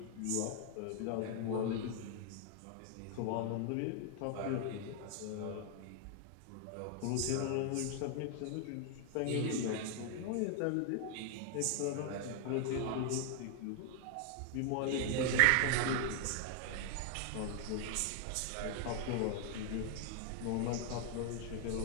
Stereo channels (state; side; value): different; both; correlation 0.00